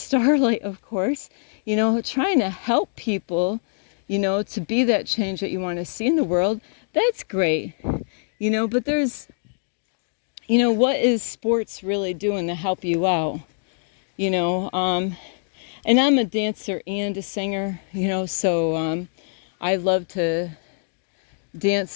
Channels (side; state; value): right; silent; digital silence